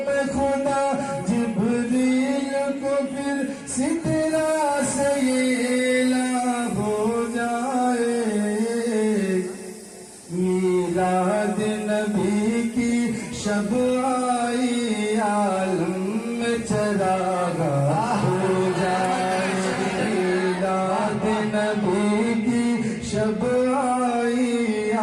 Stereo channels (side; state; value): both; identical; correlation 1.00